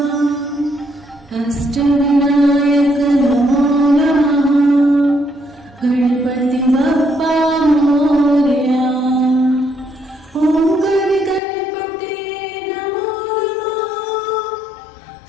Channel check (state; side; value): drops out; right; at 11.4 s